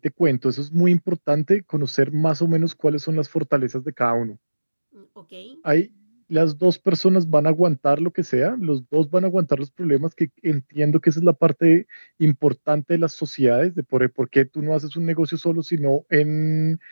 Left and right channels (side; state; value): both; inverted; correlation -1.00